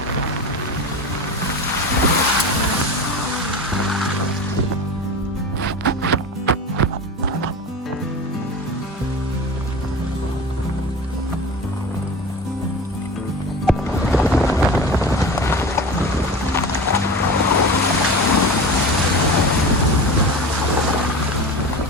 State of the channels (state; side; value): normal; both; correlation 0.31